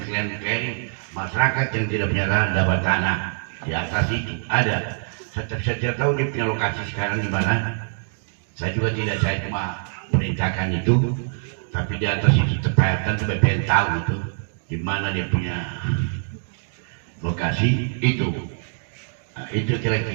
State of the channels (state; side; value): silent; left; digital silence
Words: masyarakat yang tidak punya lahan dapat tanah di atas itu ada. Saya tidak tahu dia punya lokasi sekarang di mana. Saya juga tidak, saya cuma perintahkan itu, tapi di atas itu terpahatan sampai pengen tahu itu di mana dia punya lokasi itu. Nah, itu